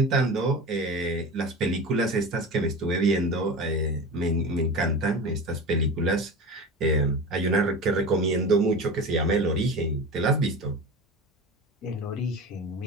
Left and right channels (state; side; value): normal; both; correlation 0.30